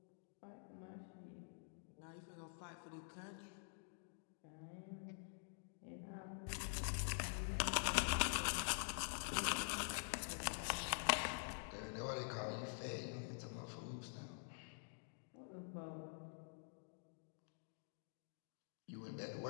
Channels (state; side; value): silent; right; digital silence